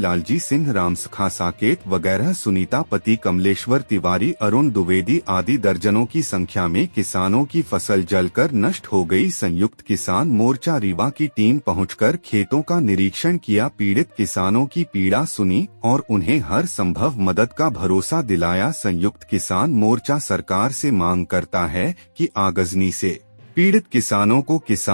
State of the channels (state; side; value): inverted; both; correlation -1.00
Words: सिंह, रामसखा साकेत वगैरह, सुनीता पति कमलेश्वर तिवारी, अरुण द्विवेदी आदि दर्जनों की संख्या में किसानों की फसल जलकर नष्ट हो गई। संयुक्त किसान मोर्चा रीवा की टीम पहुंचकर खेतों का निरीक्षण किया, पीड़ित किसानों की पीड़ा सुनी और उन्हें हर संभव मदद का भरोसा दिलाया। संयुक्त किसान मोर्चा सरकार से मांग करता है कि आगजनी से पीड़ित किसानों को